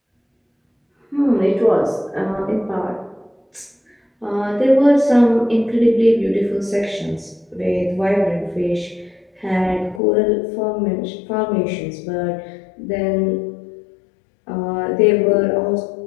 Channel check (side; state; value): right; drops out; at 10.0 s